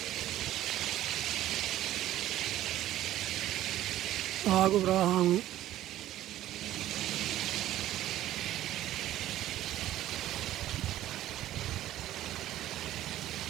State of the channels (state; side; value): quieter; left; 13.7 dB